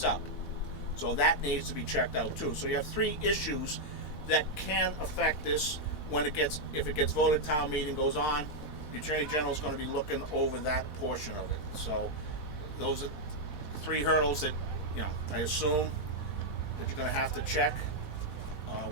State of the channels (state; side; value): late; right; 4.1 ms